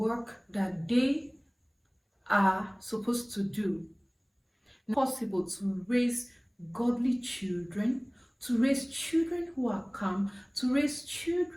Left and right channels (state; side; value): identical; both; correlation 1.00